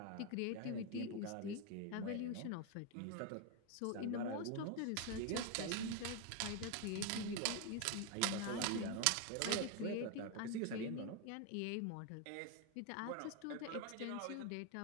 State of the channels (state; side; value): different; both; correlation 0.01